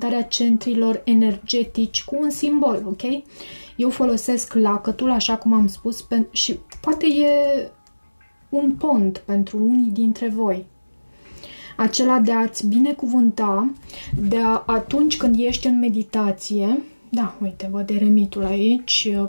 centrilor energetici cu un simbol, ok? Eu folosesc lacătul, așa cum am spus, și poate e un pont pentru unii dintre voi. Acela de a-ți binecuvânta, atunci când ești în meditație. Da, uite, văd eremitul aici,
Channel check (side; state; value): both; inverted; correlation -1.00